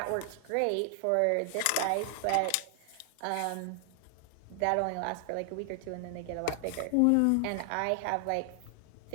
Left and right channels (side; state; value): both; different; correlation 0.00